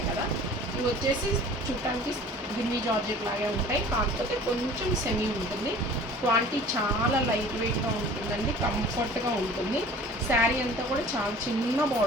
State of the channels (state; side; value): normal; both; correlation 0.45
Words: కదా. ఇవి వచ్చేసి చూడటానికి బిన్నీ జార్జెట్ లాగే ఉంటాయి, కాకపోతే కొంచెం సెమీ ఉంటుంది. క్వాలిటీ చాలా లైట్ వెయిట్గా ఉంటుందండి, కంఫర్ట్గా ఉంటుంది. శారీ అంతా కూడా చాలా చిన్న